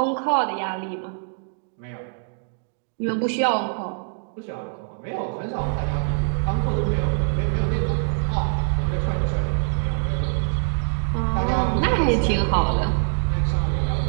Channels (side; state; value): left; silent; digital silence